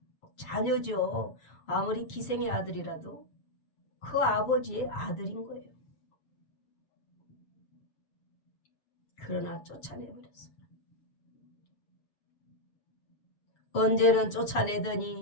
자녀죠. 아무리 기생의 아들이라도 그 아버지의 아들인 거예요. 그러나 쫓아내버렸어요. 언제는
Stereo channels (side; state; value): right; late; 6.8 ms